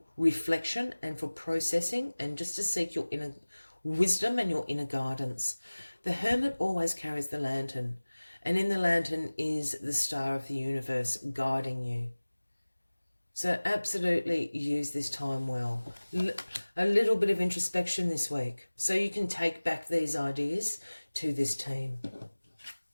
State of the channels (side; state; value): both; inverted; correlation -1.00